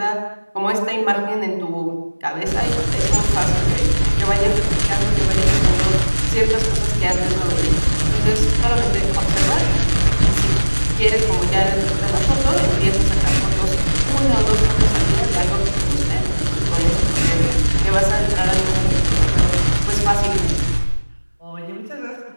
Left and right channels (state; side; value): inverted; both; correlation -1.00